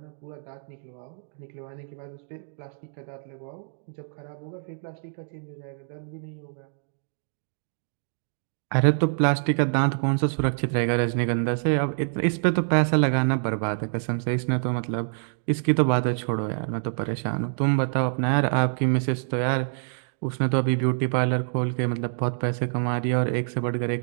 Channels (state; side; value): silent; left; digital silence